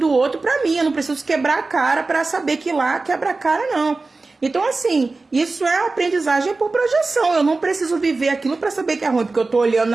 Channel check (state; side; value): quieter; left; 3.6 dB